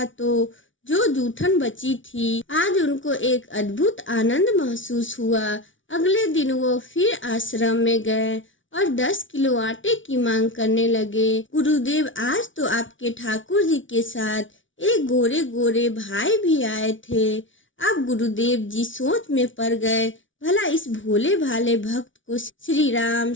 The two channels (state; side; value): late; right; 0.56 ms